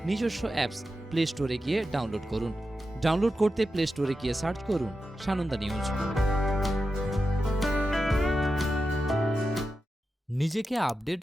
নিজস্ব অ্যাপস প্লে স্টোরে গিয়ে ডাউনলোড করুন। ডাউনলোড করতে প্লে স্টোরে গিয়ে সার্চ করুন সানন্দা নিউজ। নিজেকে আপডেট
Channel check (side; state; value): both; normal; correlation 0.90